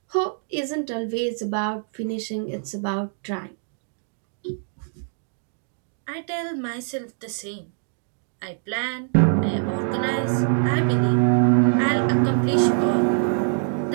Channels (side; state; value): left; silent; 62 dB below the other